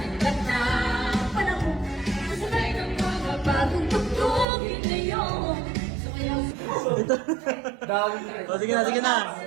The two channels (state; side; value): drops out; left; at 4.5 s